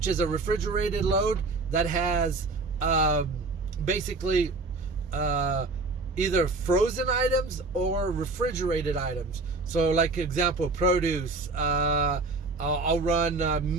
is a refrigerated load that has basically either frozen items or refrigerated items. So like example, produce, I'll run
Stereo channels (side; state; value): left; quieter; 3.5 dB